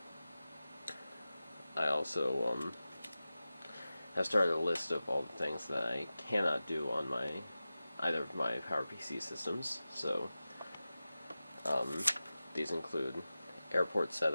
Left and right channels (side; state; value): both; inverted; correlation -0.95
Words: I also have started a list of all the things that I cannot do on either of my PowerPC systems. So these include airport